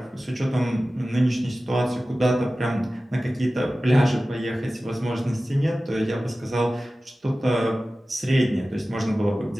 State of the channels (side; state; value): both; normal; correlation 0.96